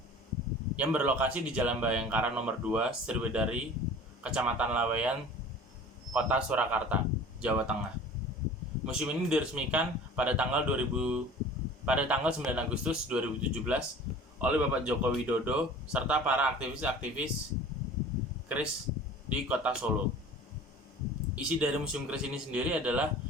yang berlokasi di Jalan Bayangkara nomor 2, Sriwedari, Kecamatan Laweyan, Kota Surakarta, Jawa Tengah. Museum ini diresmikan pada tanggal 9 Agustus 2017 oleh Bapak Joko Widodo serta para aktivis-aktivis keris di Kota Solo. Isi dari Museum Keris ini sendiri adalah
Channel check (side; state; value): both; normal; correlation 0.43